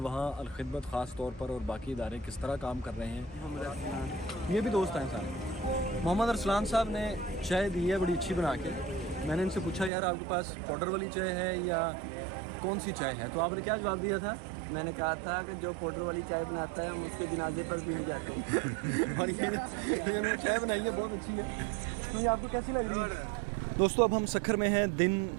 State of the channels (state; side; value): drops out; left; at 9.9 s